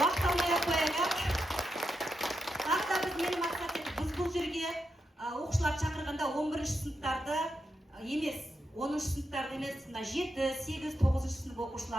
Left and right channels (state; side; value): normal; both; correlation 0.85